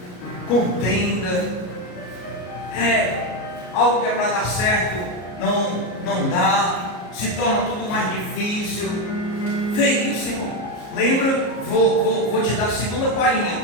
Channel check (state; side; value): late; right; 33 ms